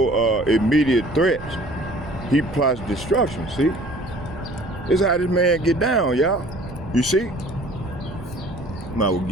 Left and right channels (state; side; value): noise; right; rumble, 14 dB below the sound